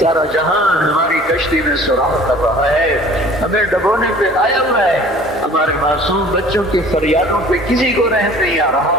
جہان ہماری کشتی میں سراغ کر رہا ہے، ہمیں ڈبونے پہ آیا ہوا ہے، ہمارے معصوم بچوں کی فریادوں پہ کسی کو رحم نہیں آ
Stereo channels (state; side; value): normal; both; correlation 0.49